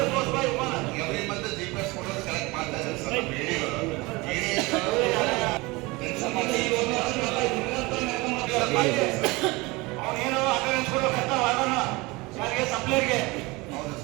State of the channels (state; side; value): quieter; left; 23.5 dB